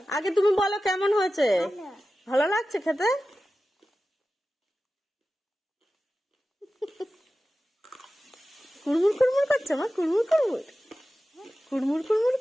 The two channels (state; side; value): normal; both; correlation 0.94